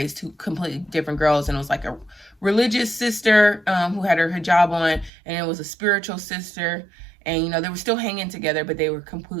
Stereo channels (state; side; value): drops out; left; at 5.1 s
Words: two completely different girls, and it was like a religious sister who had her hijab on, and it was a spiritual sister, and you know, they were still hanging together, but they were